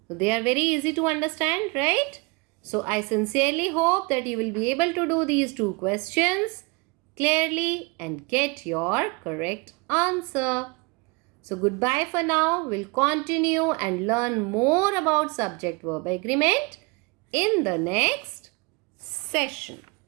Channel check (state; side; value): quieter; left; 28.3 dB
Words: So they are very easy to understand, right? So I sincerely hope that you will be able to do these two questions clearly and get your correct answer. So goodbye for now. We'll continue and learn more about subject-verb agreement in the next session.